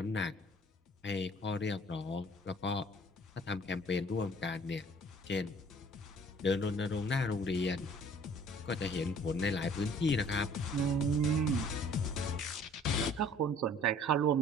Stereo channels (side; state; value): both; normal; correlation 0.53